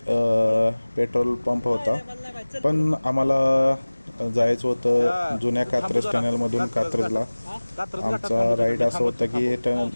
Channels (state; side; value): inverted; both; correlation -1.00